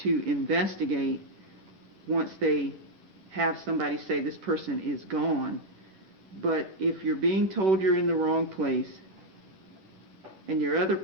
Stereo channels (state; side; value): late; left; 10 ms